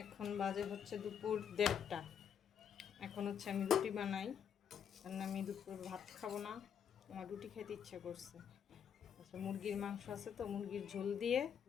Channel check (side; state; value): right; quieter; 8.1 dB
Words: এখন বাজে হচ্ছে দুপুর 1:30। এখন হচ্ছে আমি রুটি বানাই, কারণ আমি দুপুর ভাত খাবো না, আমার রুটি খেতে ইচ্ছা করছে। আচ্ছা, মুরগির মাংস আছে তো, মুরগির ঝোল দিয়ে